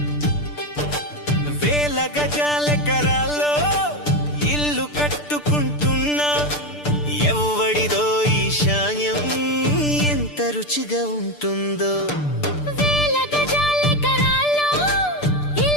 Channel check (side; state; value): right; late; 6.8 ms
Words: గజాలెకరాల్లో ఇల్లు కట్టుకుంటున్నా, ఎవ్వడిదో ఈశాన్యం ఎంత రుచిగా ఉంటుందో.